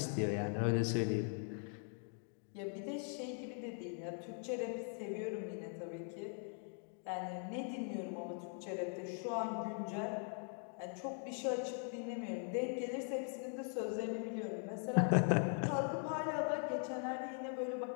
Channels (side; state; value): right; silent; 50 dB below the other